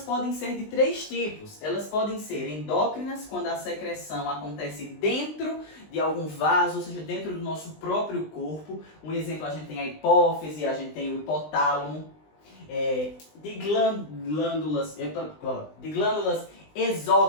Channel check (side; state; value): right; late; 20 ms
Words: podem ser de 3 tipos. Elas podem ser endócrinas, quando a secreção acontece dentro de algum vaso, ou seja, dentro do nosso próprio corpo. Um exemplo, a gente tem a hipófise, a gente tem o hipotálamo. De glândulas